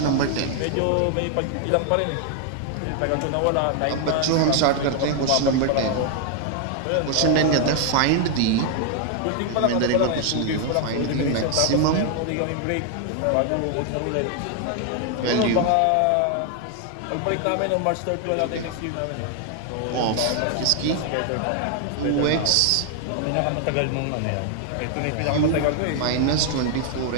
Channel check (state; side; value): different; both; correlation 0.00